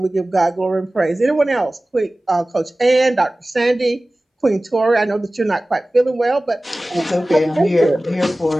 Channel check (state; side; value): normal; both; correlation 0.97